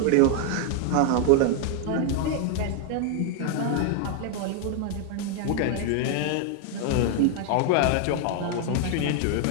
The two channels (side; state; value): both; different; correlation 0.00